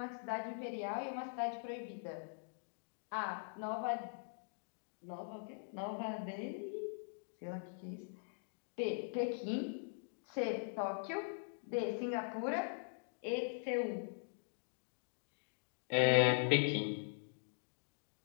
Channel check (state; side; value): silent; right; digital silence